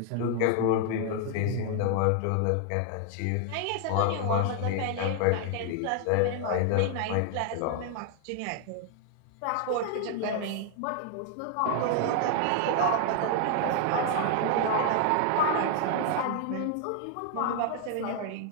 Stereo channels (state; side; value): different; both; correlation 0.00